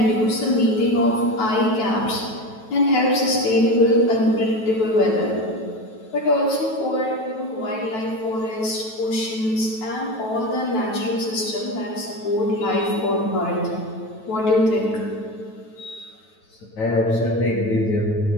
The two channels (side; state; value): right; late; 9.2 ms